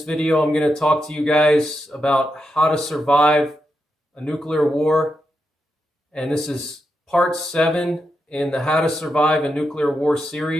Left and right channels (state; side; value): normal; both; correlation 0.86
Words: video, I'm going to talk to you guys about how to survive a nuclear war. And this is part 7 in the How to Survive a Nuclear War